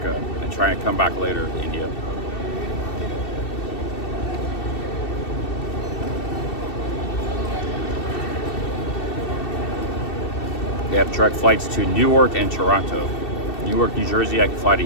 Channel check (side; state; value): right; late; 2.7 ms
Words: and trying to come back later to India. They have direct flights to Newark and Toronto. Newark, New Jersey, I can fly to